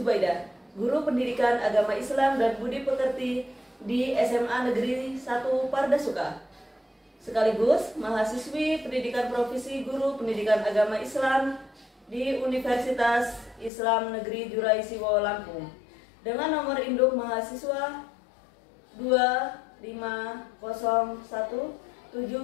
guru pendidikan agama Islam dan budi pekerti di SMA Negeri 1 Pardasuka. Sekaligus mahasiswi pendidikan profesi guru pendidikan agama Islam di Universitas Islam Negeri Jurai Siwo Lampung dengan nomor induk mahasiswa 25017311181.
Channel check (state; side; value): drops out; right; at 13.7 s